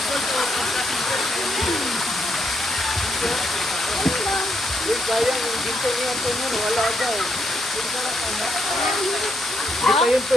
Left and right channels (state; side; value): normal; both; correlation 0.77